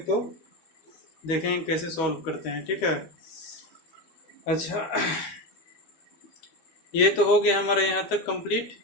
देखेंगे कैसे सॉल्व करते हैं, ठीक है। अच्छा, ये तो हो गया हमारा यहाँ तक कंप्लीट,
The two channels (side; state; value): right; late; 13 ms